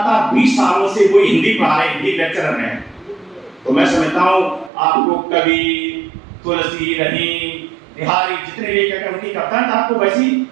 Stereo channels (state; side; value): drops out; left; at 4.7 s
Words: 20 सालों से कोई हिंदी पढ़ा रहे, हिंदी लेक्चरर हैं, तो मैं समझता हूँ आपको कवि, तुलसी, रहीम, बिहारी जितने भी उनकी कविताएं आपको वैसी